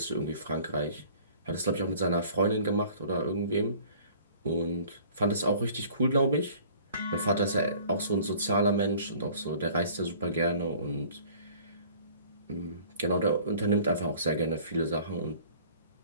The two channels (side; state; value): both; inverted; correlation -0.51